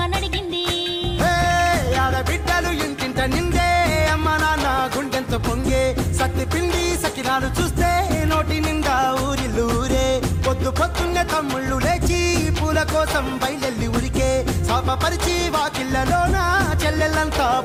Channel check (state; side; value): identical; both; correlation 1.00